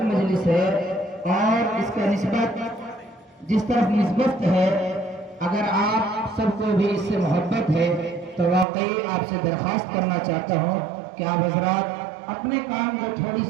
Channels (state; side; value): drops out; left; at 8.7 s